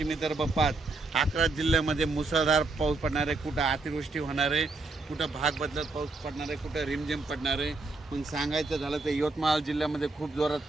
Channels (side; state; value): left; quieter; 3.4 dB